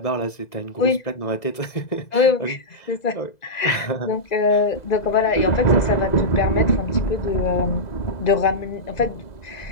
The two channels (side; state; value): right; late; 2.0 ms